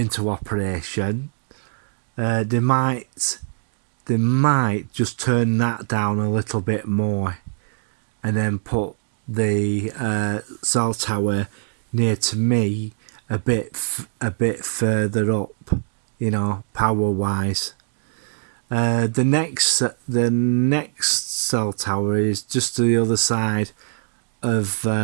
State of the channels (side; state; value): left; silent; digital silence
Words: operation, they might just turn that down a little bit more, and then put the cell tower near to me a bit further up, power wise. The next cell tower is just to the other side of